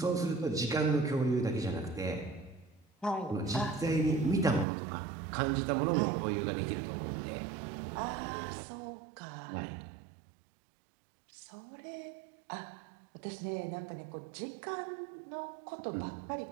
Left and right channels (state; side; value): drops out; left; at 4.7 s